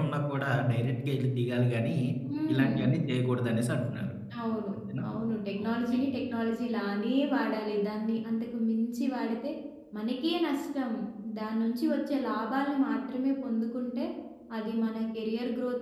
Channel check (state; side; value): identical; both; correlation 1.00